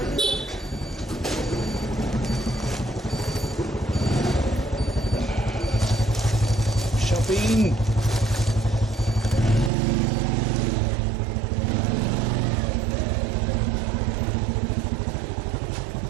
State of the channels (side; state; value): left; drops out; at 9.7 s